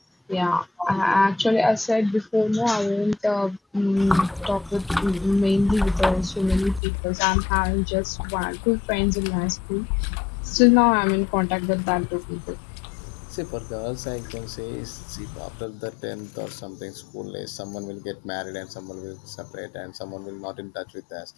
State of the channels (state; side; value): drops out; right; at 6.8 s